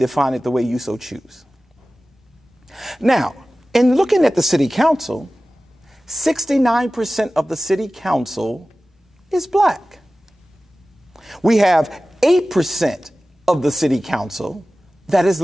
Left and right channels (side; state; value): both; normal; correlation 0.96